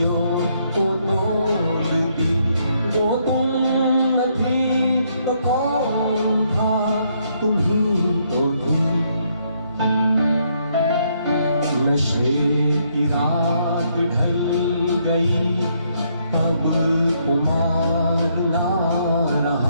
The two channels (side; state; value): both; inverted; correlation -0.73